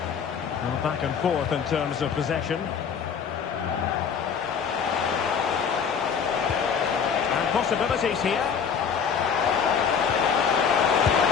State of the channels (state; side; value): quieter; right; 6.8 dB